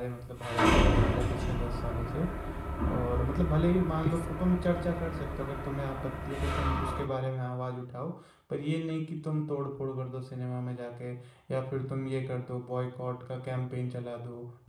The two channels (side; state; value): both; identical; correlation 1.00